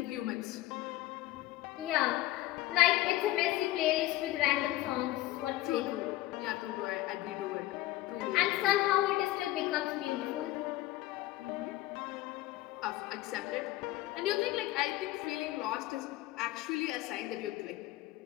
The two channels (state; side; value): quieter; right; 16.5 dB